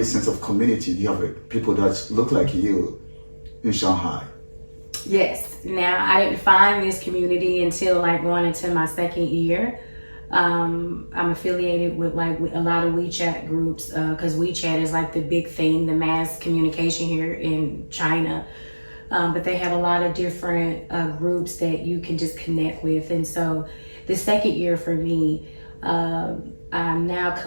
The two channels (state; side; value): inverted; both; correlation -1.00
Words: sense of community? Do you have people that look like you in Shanghai? Yes. Now, I didn't find this community until like going into my second year. I'm affiliated with like a lot of WeChat groups because WeChat is like the big thing, the mass communication here in China. But they have a lot of different groups that you can just connect with. And so the second year for me, I'm now